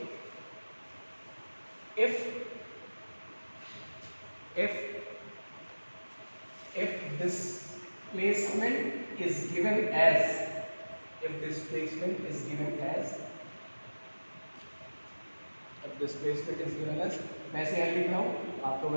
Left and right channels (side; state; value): both; inverted; correlation -1.00